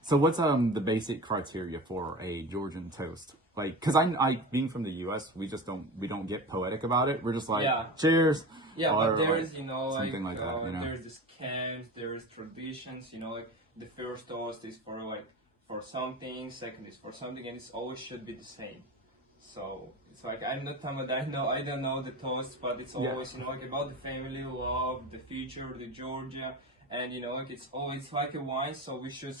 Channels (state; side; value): normal; both; correlation 0.30